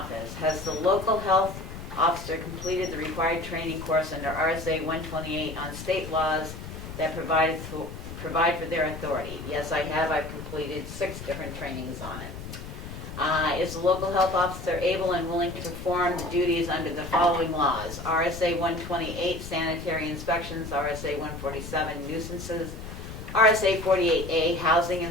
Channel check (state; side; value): noise; left; rumble, 10 dB below the sound